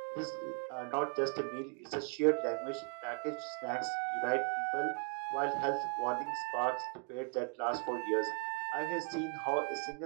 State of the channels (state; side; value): quieter; left; 38.8 dB